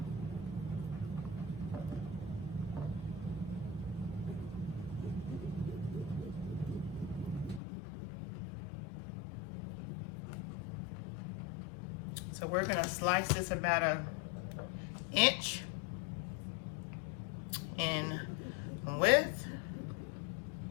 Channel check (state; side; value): drops out; right; at 7.6 s